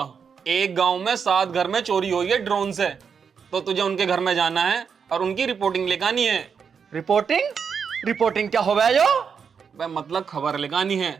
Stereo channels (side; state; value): left; quieter; 6.5 dB